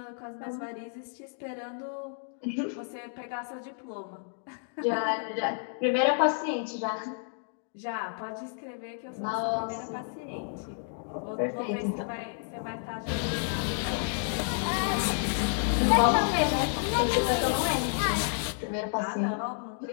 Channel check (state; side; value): silent; right; digital silence